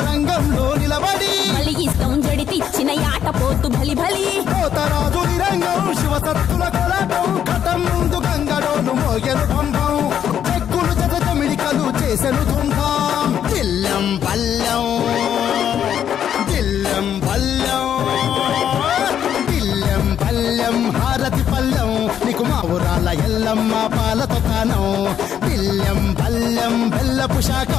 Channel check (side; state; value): right; quieter; 9.4 dB